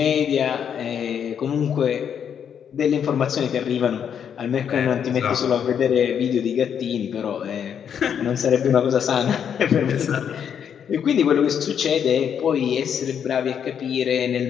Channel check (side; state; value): right; quieter; 8.1 dB